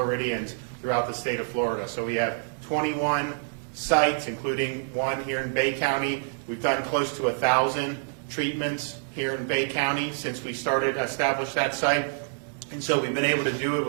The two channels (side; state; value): left; silent; 60 dB below the other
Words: throughout the state of Florida. So we have 21 sites, including one here in Bay County. We've done close to 1,000 treatments here in Bay County since we established that site. And so we've been able to do it